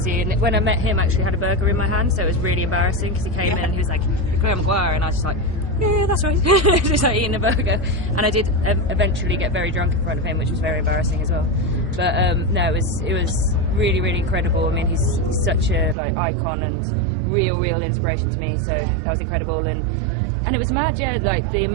and when I met him I actually had a burger in my hand, so it was really embarrassing because he came in and he was like, Clare Maguire, and I was just like, yeah, that's right. Just like eating a burger, and I did eventually get very drunk in front of him, which was very embarrassing as well. But no, it was really incredible. I mean, he's such a like icon and real inspiration to me, so that was incredible. And it was mad, yeah, like the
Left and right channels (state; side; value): drops out; left; at 16.0 s